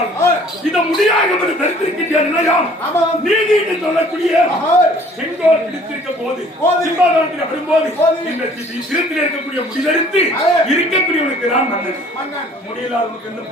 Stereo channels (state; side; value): normal; both; correlation 0.54